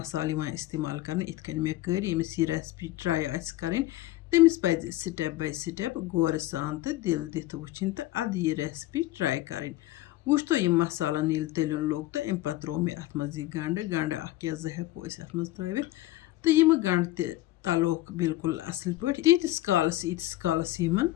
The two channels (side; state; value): right; quieter; 16.3 dB